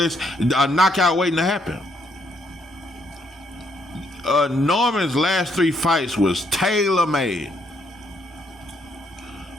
a knockout waiting to happen. Norman's last 3 fights was tailor-made.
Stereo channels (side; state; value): both; normal; correlation 0.72